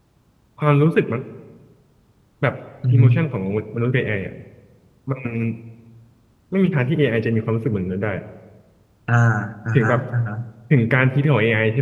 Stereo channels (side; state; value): both; identical; correlation 1.00